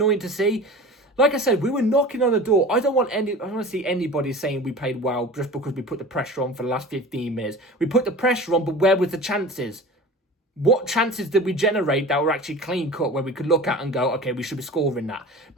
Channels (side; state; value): both; normal; correlation 0.36